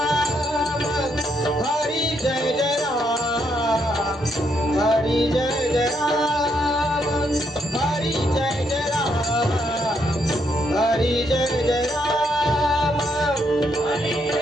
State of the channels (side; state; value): both; normal; correlation 0.76